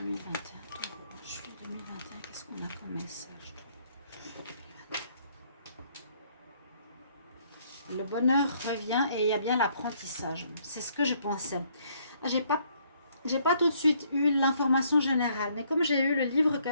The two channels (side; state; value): both; inverted; correlation -0.67